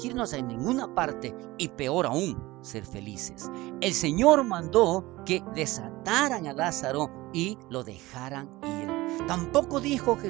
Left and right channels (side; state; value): left; quieter; 19.5 dB